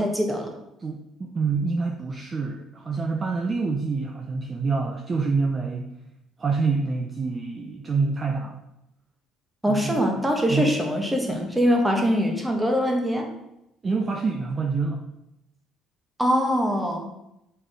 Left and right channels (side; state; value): both; normal; correlation 0.79